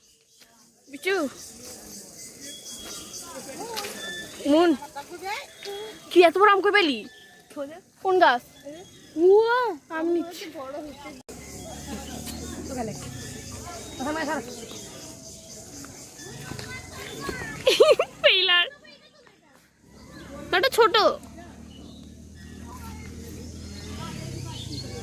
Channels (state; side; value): identical; both; correlation 1.00